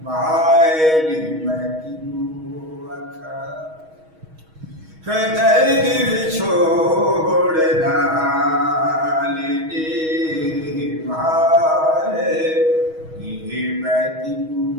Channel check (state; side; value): late; left; 6.3 ms